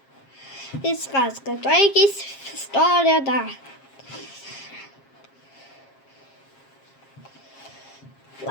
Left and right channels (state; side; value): late; right; 7.4 ms